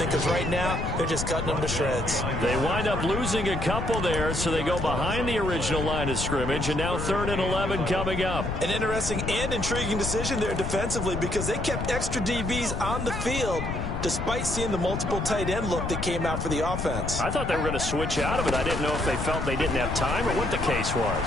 because right now they're just cutting them to shreds. They wind up losing a couple there, so they go behind the original line of scrimmage, and now 3rd and 11 coming up. An interesting and intriguing decision there defensively because they kept extra DBs on the field despite seeing the multiple tight end look that came out for the offense. I thought they were going to switch out of it. I didn't know if they felt they didn't have time or what the case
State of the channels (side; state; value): left; noise; rumble, 4 dB below the sound